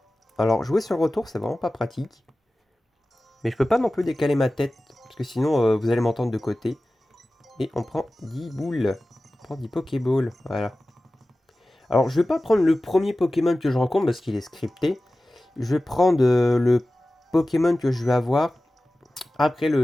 Alors, jouer sur le retour, c'est vraiment pas pratique. Mais je peux pas non plus décaler ma tête. Parce que sinon, vous allez m'entendre de côté. Et on prend 10 boules. On prend 10 Pokéballs. Voilà. Alors, je vais pas prendre le premier Pokémon que je rencontre parce qu'il est scripté. Je vais prendre le Pokémon que je vais avoir après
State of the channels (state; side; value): normal; both; correlation 0.96